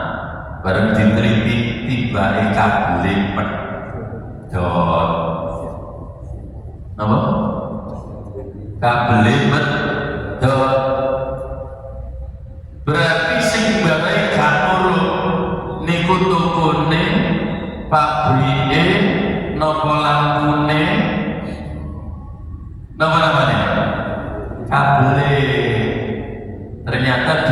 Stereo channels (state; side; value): identical; both; correlation 1.00